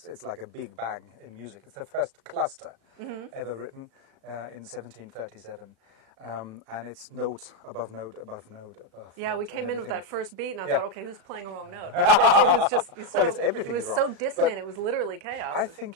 like a big bang in music. It's the first cluster mm-hmm. ever written in 1737. And it's note above note above note above Yeah, note we came in with that first beat, and I thought, okay, who's playing a wrong note? It was just well, it's everything it was is so wrong. dissonant, But it was literally chaos. I think,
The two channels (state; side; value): late; left; 36 ms